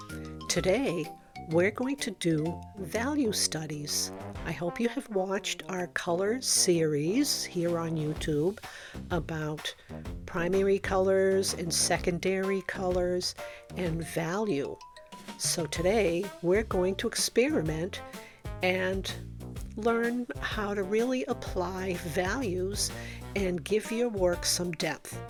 Today, we're going to do value studies. I hope you have watched our colors series here on YouTube about primary colors and secondary colors and value. So today, we're going to experiment and learn how to really apply values and give your work some depth.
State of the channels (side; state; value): both; identical; correlation 1.00